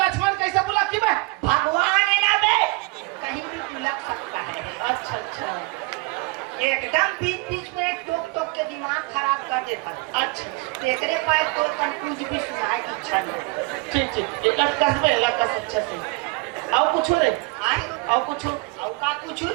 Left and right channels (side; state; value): left; quieter; 26.2 dB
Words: कैसे बुला की बे भगवान है ना बे कहीं भी बुलक सकता है। अच्छा अच्छा एकदम बीच बीच में टोक टोक के दिमाग खराब कर देता है। अच्छा देखने पाए तो कुछ भी सुनाए की इच्छा नहीं। ठीक ठीक एक कस बे कस अच्छा से आओ कुछ रे आई आओ कुछ और का कुछ